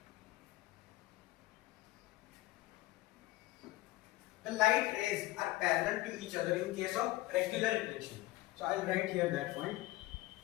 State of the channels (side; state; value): right; quieter; 18.4 dB